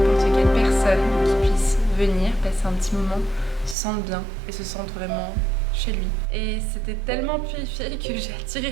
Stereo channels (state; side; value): drops out; left; at 3.8 s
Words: quelle personne qui puisse venir passer un petit moment se sente bien et se sente vraiment chez lui. Et c'était tellement purifié que j'ai